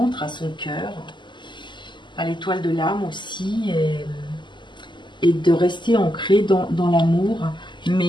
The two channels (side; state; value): right; late; 0.22 ms